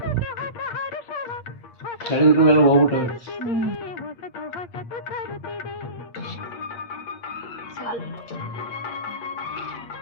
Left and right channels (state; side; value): late; right; 8.6 ms